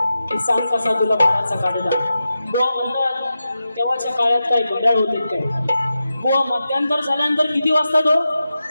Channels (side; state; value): both; inverted; correlation -0.91